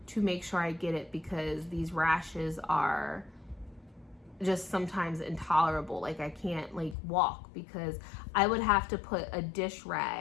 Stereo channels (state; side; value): drops out; right; at 7.0 s